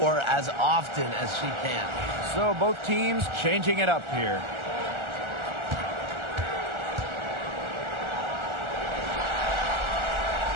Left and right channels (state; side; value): late; left; 1.4 ms